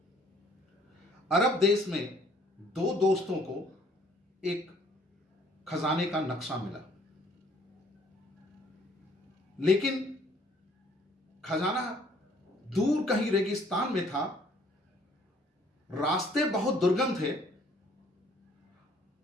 अरब देश में दो दोस्तों को एक खजाने का नक्शा मिला, लेकिन खजाना दूर कहीं रेगिस्तान में था। रास्ते बहुत दुर्गम थे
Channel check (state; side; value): normal; both; correlation 0.60